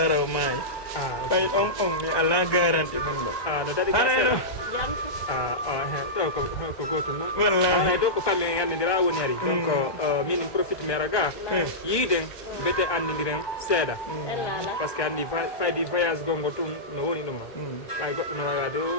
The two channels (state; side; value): late; right; 1.2 ms